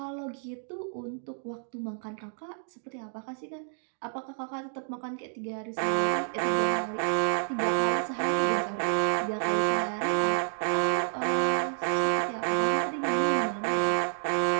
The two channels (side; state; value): left; silent; 58 dB below the other